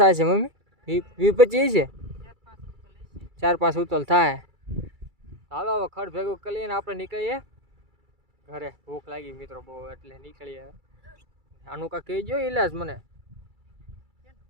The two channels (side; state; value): left; late; 2.3 ms